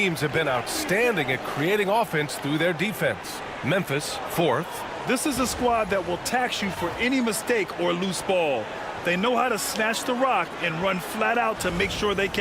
have been outstanding at creating offense through their defense. Memphis, 4th. This is a squad that will tax you for any mistake or loose ball. They know how to snatch the rock and run flat out to make sure they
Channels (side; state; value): both; identical; correlation 1.00